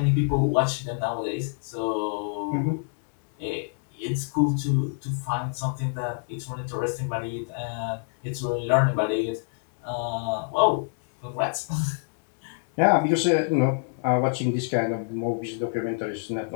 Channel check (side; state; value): right; silent; digital silence